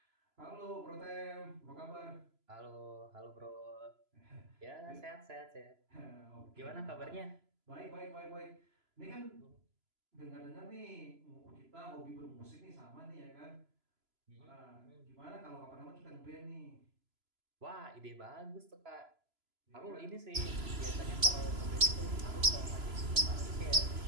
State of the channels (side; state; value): left; late; 3.0 ms